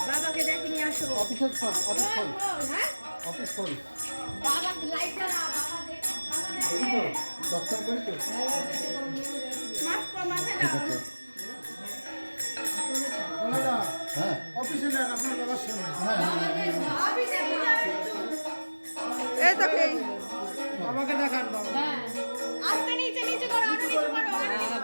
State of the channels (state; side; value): inverted; both; correlation -1.00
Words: বাবাকে ডেকে নিয়ে আসো। অফিস করি বাবা লাইট জ্বালা, দর্শন করি তো হ্যাঁ অফিসে নেন আপনার বাবার সামনে। এই তো কি বাবাকে দেখান বাবা। আস্তে নিচে নিচে করো, আরো নিচে করো, আরো নিচে